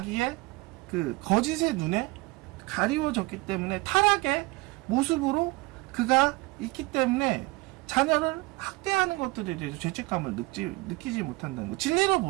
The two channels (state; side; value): quieter; left; 23.2 dB